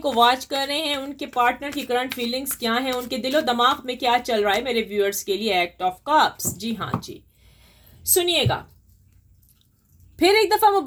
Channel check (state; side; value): identical; both; correlation 1.00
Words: को वॉच कर रहे हैं, उनके पार्टनर की करंट फीलिंग्स क्या हैं, उनके दिलो दिमाग में क्या चल रहा है मेरे व्यूअर्स के लिए। एक्ट ऑफ कप्स, जी हाँ जी, सुनिएगा। फिर एक दफ़ा